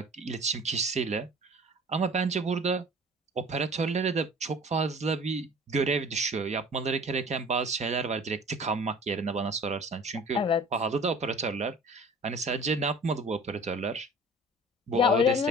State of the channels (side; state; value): both; normal; correlation 0.45